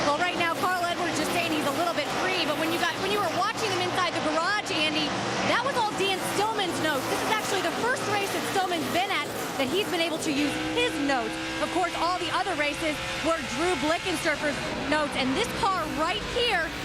Well, right now, Carl Edwards just saying he's a little bit free, but when you were watching him inside the garage, Andy, that was all Dan Stillman's notes. This is actually the first race that Stillman's been at that he's been able to use his notes. Of course, all the other races were Drew Blickensurfer's notes, and this car right here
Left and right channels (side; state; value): both; identical; correlation 1.00